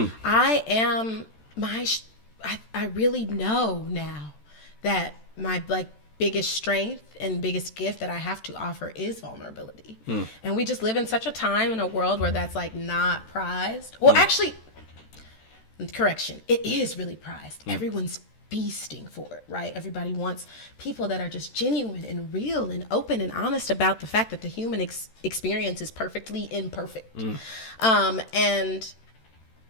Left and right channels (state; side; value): late; right; 13 ms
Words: I am I really know now that my biggest strength and biggest gift that I have to offer is vulnerability. And we just live in such a time in a world where that's not prized. Well, actually, correction, it is really prized. Everyone's feasting for it, right? Everybody wants people that are just genuine and real and open and honest about the fact that the human experience is perfectly imperfect. And